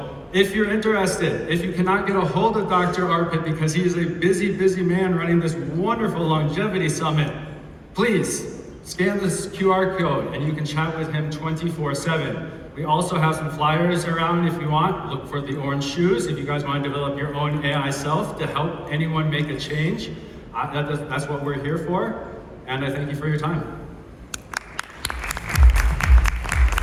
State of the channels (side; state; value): both; identical; correlation 1.00